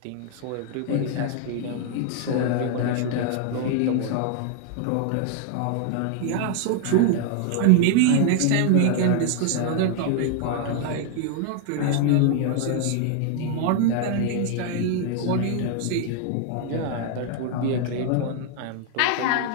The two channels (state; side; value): different; both; correlation 0.00